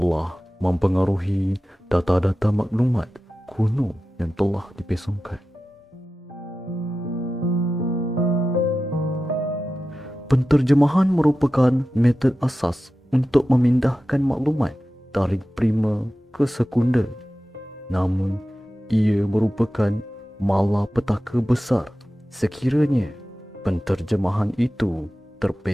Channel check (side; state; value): both; normal; correlation 0.93